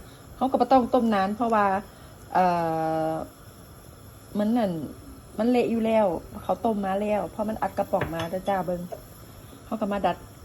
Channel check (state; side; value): identical; both; correlation 1.00